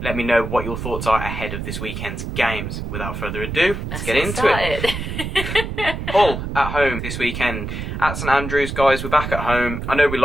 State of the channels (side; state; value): right; noise; rumble, 5 dB below the sound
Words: Let me know what your thoughts are ahead of this weekend's games. Without further ado, let's get into it. Hull at home this weekend at St Andrews. Guys, we're back at home. I know we